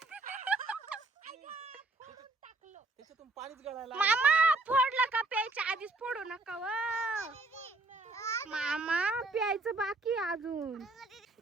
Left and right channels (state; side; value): quieter; left; 3.3 dB